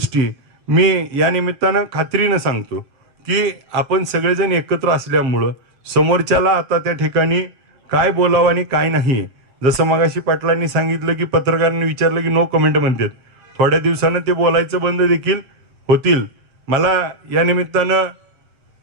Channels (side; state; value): left; late; 8.0 ms